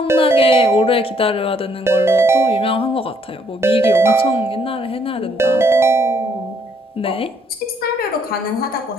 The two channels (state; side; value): normal; both; correlation 0.68